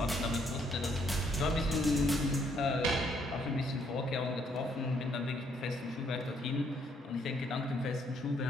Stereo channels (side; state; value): both; normal; correlation 0.69